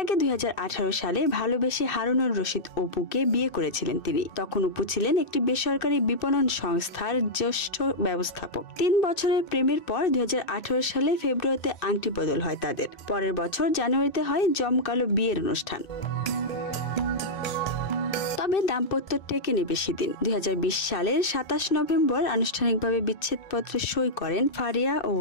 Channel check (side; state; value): right; late; 2.6 ms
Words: আগে 2018 সালে ভালোবেসে হারুনুর রশিদ অপুকে বিয়ে করেছিলেন তিনি। তখন অপু ছিলেন একটি বেসরকারি বিপণন সংস্থার জ্যেষ্ঠ ব্যবস্থাপক। 3 বছরের প্রেমের পর 2018 সালে ফেব্রুয়ারিতে আংটি বদল হয় তাদের। পরের বছর জানুয়ারিতে হয় জমকালো বিয়ের অনুষ্ঠান। তবে দাম্পত্য টেকেনি বেশি দিন। 2020 সালের 27 নভেম্বর আনুষ্ঠানিকভাবে বিচ্ছেদপত্রে সই করেন ফারিয়া ও